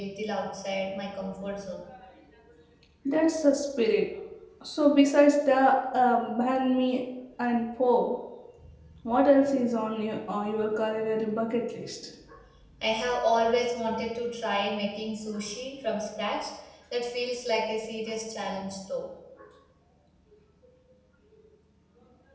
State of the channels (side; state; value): both; identical; correlation 1.00